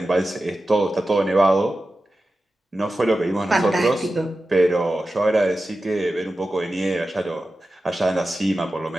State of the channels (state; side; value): normal; both; correlation 0.93